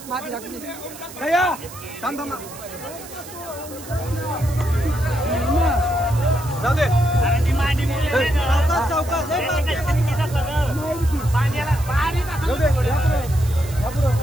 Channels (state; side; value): noise; right; hiss, 16 dB below the sound